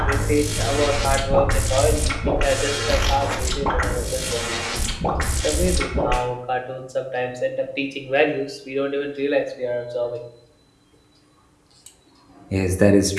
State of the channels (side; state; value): both; identical; correlation 1.00